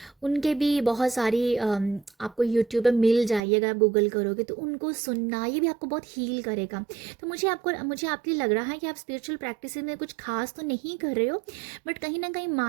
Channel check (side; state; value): left; drops out; at 3.4 s